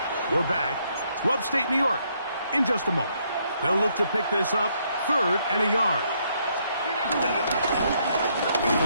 We're back to upstate New York in just a moment. They'll look to pick this up 3rd and a yard.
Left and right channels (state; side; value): inverted; both; correlation -0.72